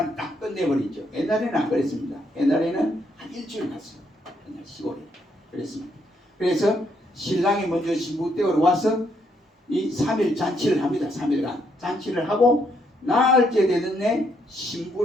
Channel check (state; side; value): normal; both; correlation 0.74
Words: 딱 끝내버리죠. 옛날에는 안 그랬습니다. 옛날에는 한 일주일 갔어요. 그냥 시골에 그랬습니다. 그래서 신랑이 먼저 신부 댁으로 와서 이 3일 잔치를 합니다. 3일간 잔치를 하고 나흘째 되는 날